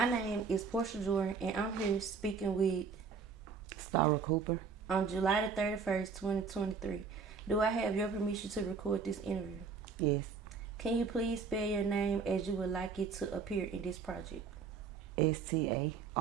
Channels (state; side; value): quieter; left; 5.4 dB